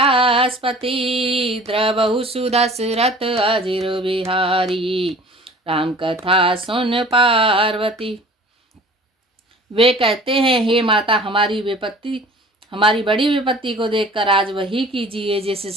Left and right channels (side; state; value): both; normal; correlation 0.46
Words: द्रवहु सुदशरथ अजिर बिहारी, राम कथा सुन पार्वती। वे कहते हैं, हे माता, हमारी बड़ी विपत्ति को देखकर आज वही कीजिए